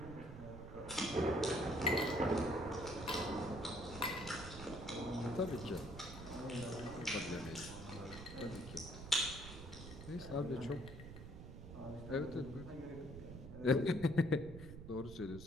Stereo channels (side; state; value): right; noise; rumble, 11 dB below the sound